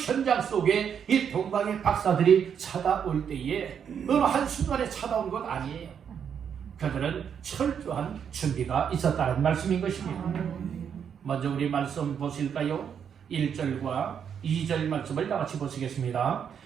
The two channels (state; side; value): quieter; left; 7.8 dB